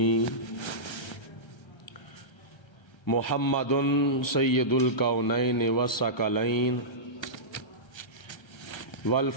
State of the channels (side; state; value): right; late; 1.3 ms